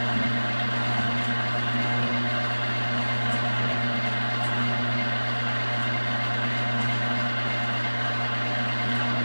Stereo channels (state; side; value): inverted; both; correlation -1.00